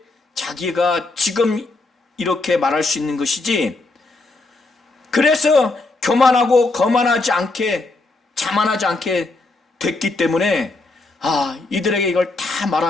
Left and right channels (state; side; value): quieter; right; 3.3 dB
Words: 자기가 지금 이렇게 말할 수 있는 것이지, 그래서 교만하고 거만하지 않게, 자만하지 않게 됐기 때문에 이들에게 이걸 다